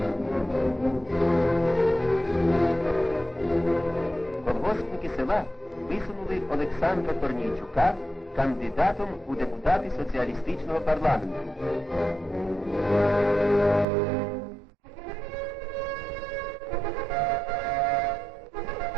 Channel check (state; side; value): drops out; left; at 13.9 s